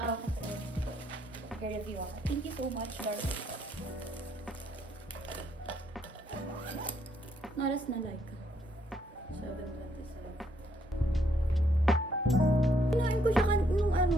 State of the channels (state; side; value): normal; both; correlation 0.72